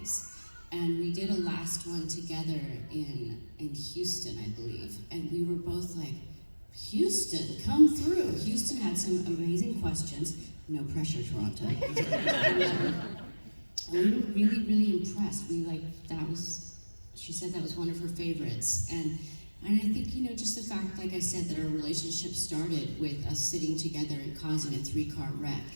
And we did a last one together in Houston, I believe. And we were both like, Houston, come through. Houston had some amazing questions. No pressure, Toronto. And we were really, really impressed. She said that was one of her favorites. And I think, you know, just the fact, like I said, that our relationship started with us sitting together and causing a 3-car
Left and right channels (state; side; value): inverted; both; correlation -1.00